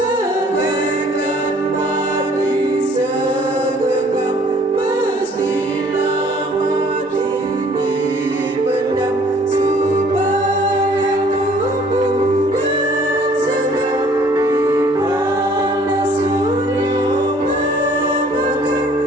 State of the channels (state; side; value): normal; both; correlation 0.57